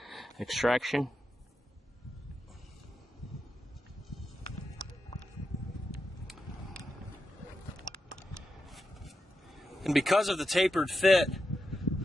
extraction. And because of the tapered fit,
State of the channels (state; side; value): normal; both; correlation 0.86